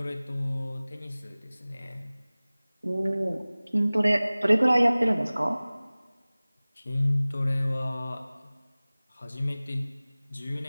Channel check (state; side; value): inverted; both; correlation -0.99